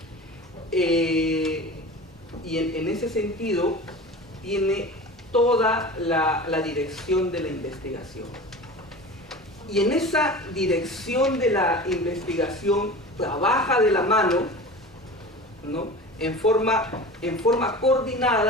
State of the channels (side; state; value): both; normal; correlation 0.35